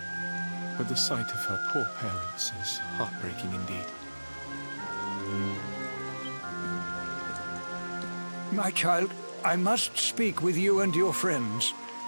But the sight of her poor parents is heartbreaking indeed. My child, I must speak with you and your friends.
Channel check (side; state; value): both; inverted; correlation -1.00